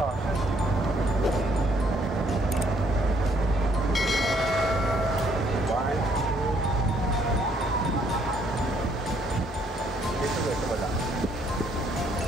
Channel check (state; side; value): normal; both; correlation 0.67